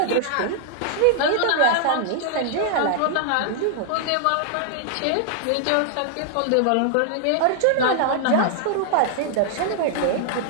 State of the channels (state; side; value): different; both; correlation -0.01